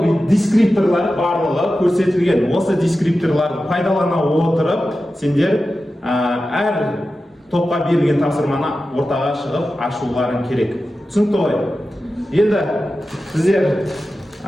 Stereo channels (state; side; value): normal; both; correlation 0.93